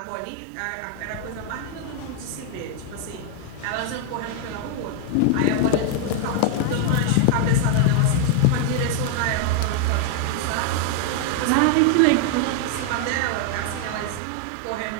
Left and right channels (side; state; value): both; different; correlation 0.00